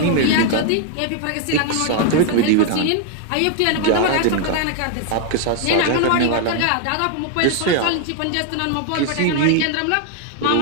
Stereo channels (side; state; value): both; different; correlation 0.00